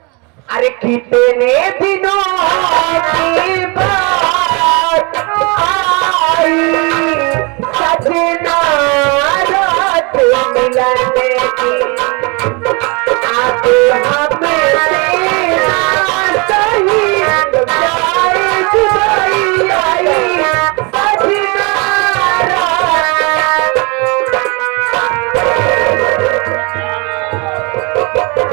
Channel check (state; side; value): quieter; left; 30.1 dB